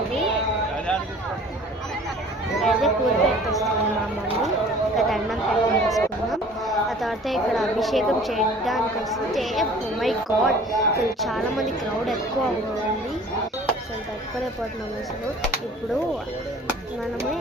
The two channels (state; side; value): normal; both; correlation 0.48